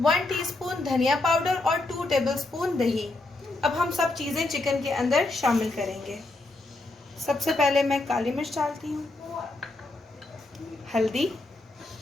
1 टीस्पून धनिया पाउडर और 2 टेबलस्पून दही। अब हम सब चीजें चिकन के अंदर शामिल करेंगे। सबसे पहले मैं काली मिर्च डालती हूँ, हल्दी,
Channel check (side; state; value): right; quieter; 3.0 dB